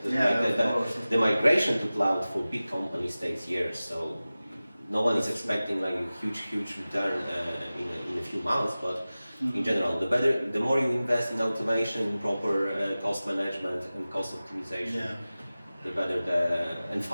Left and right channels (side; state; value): both; inverted; correlation -0.97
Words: The migration to cloud for big companies takes years. So no one is expecting like a huge return in a few months, but in general, the more you invest in automation, proper cost management and cost optimization, the better and